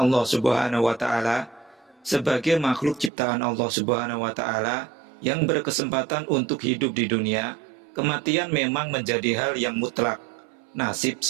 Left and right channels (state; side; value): drops out; left; at 3.1 s